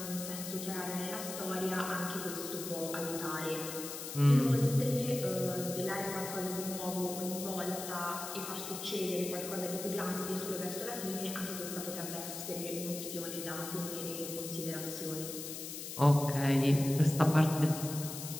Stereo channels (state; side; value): noise; left; hiss, 8 dB below the sound